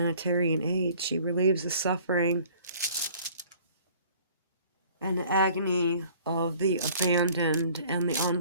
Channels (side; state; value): both; inverted; correlation -0.53